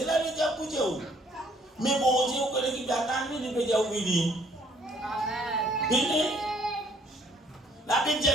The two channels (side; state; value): both; normal; correlation 0.63